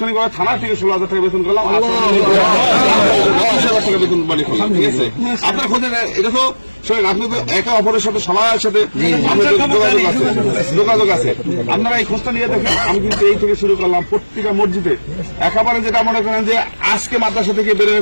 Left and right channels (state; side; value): inverted; both; correlation -1.00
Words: থানা থেকে 16,000 টাকা বেতন করলাম, 20,000 টাকা বেতন মানে করলাম। ঠিক আছে, আপনার খোঁজে এটা তো শোনেন, আপনি তো একে অপরের সাথে সবার সাথে যোগাযোগ আছে, আপনারা এই খোঁজটা নিয়ে দেখেন। আমি কিন্তু এই থেকে শুরু করলাম প্রত্যেকটা মসজিদে, একেবারে যেটা মনে করেন যে আজকে মাদ্রাসা থেকে